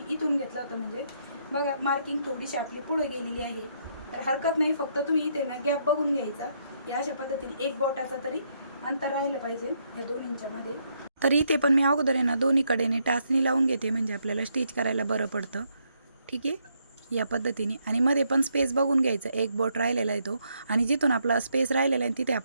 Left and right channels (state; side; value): inverted; both; correlation -0.75